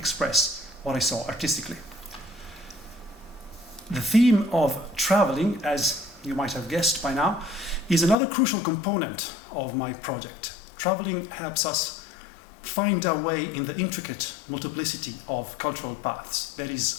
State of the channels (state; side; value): drops out; right; at 8.2 s